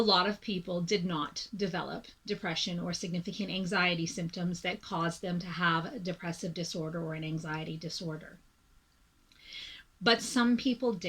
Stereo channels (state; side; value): identical; both; correlation 1.00